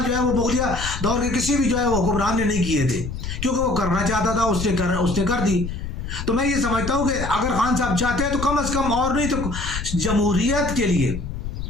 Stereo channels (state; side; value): noise; left; rumble, 6 dB below the sound